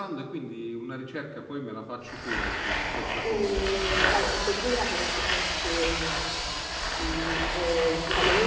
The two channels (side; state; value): both; identical; correlation 1.00